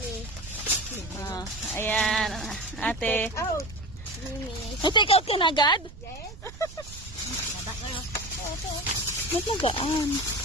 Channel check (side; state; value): right; noise; rumble, 15 dB below the sound